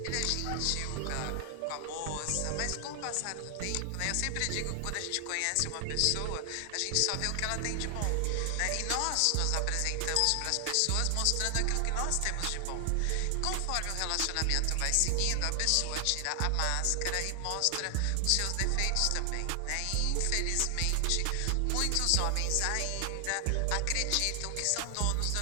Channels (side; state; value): both; different; correlation 0.00